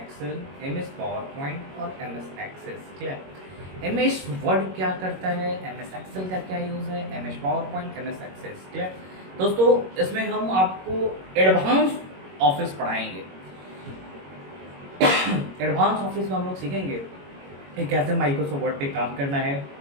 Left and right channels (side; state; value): left; late; 21 ms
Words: M S PowerPoint और M S Access. Clear? M S Word क्या करता है, एम एस एक्सेल का क्या यूज़ है, M S PowerPoint, M S Access. Clear? दोस्तों इसमें हम आपको एडवांस ऑफिस पढ़ाएंगे। एडवांस ऑफिस में हम लोग सीखेंगे कि कैसे माइक्रोसॉफ्ट वर्ड पे काम करना है,